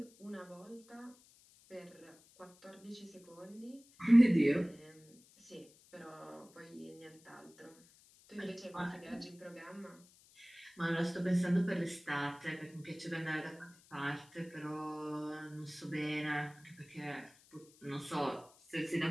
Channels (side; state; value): left; noise; hiss, 26 dB below the sound